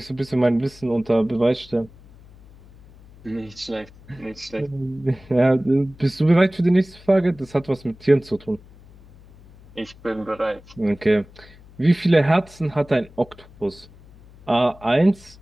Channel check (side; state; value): left; noise; hum, 23 dB below the sound